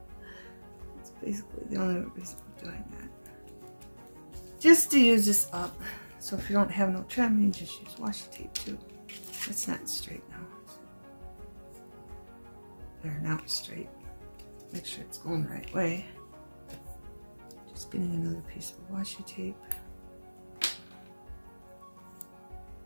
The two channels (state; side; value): inverted; both; correlation -1.00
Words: That's basically the only reason I'm doing that. Just to use this up. So if you don't have no trim, you just use washi tape too. It's not straight now. There, now it's straight. Make sure it's going the right way. Just getting another piece of washi tape.